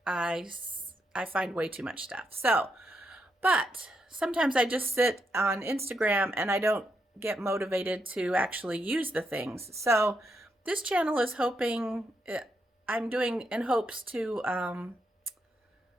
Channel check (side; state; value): both; normal; correlation 0.81